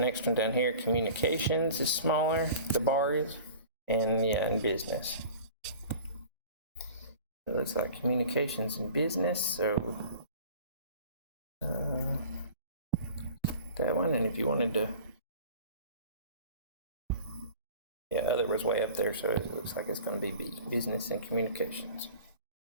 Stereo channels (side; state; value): both; inverted; correlation -0.42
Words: one down here, communications is smaller, the bar is, and yeah, and business. It looks like communications and business, so that one, and if you wanted to, yeah, other was way up there, so it looks like it's going to be B, business and communications.